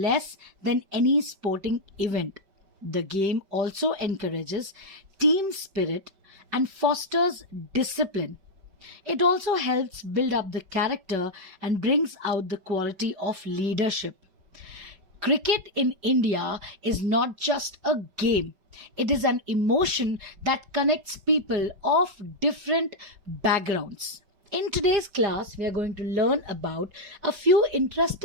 than any sporting event. The game also encourages team spirit and fosters discipline. It also helps build up the character and brings out the quality of leadership. Cricket in India is not just a game, it is an emotion that connects people of different backgrounds. In today's class, we are going to learn about a few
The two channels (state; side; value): late; left; 5.1 ms